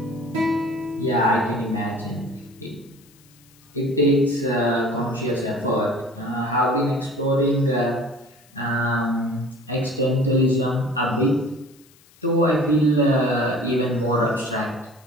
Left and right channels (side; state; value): left; noise; hiss, 29 dB below the sound